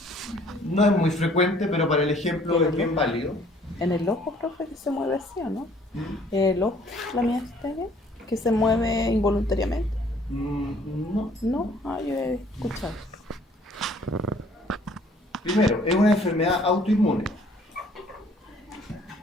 No es muy frecuente, pero para el ejemplo es bien válido. En el ojo, profe, que se mueve así, ¿o no? El ojo, la miastenia, que se mueve involuntariamente. No. No, yo he escuchado. Primero, es una enfermedad autoinmune.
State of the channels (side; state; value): both; normal; correlation 0.59